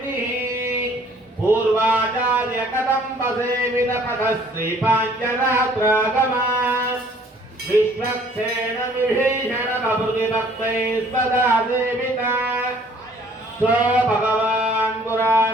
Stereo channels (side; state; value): both; normal; correlation 0.58